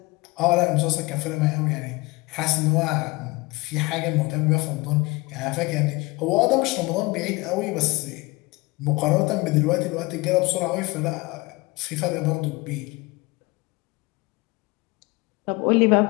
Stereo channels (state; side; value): quieter; right; 23.6 dB